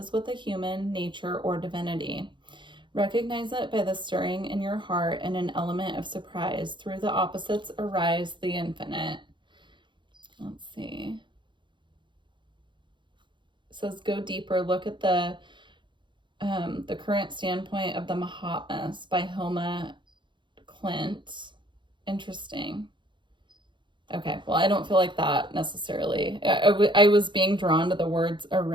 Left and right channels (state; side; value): late; left; 0.23 ms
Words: with a human, nature, or divinity. Recognize it by the stirring in your heart and an element of surprise. Through the opposites arise the infinite. Let's see. Says go deeper. Look at the current standpoint of the Mahatmas by Hilma Klint. Interesting. Okay, well, I don't feel like that necessarily. I was being drawn to the words